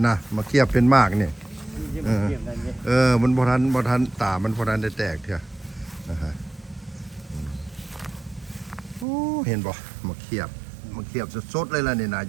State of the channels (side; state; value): left; drops out; at 9.1 s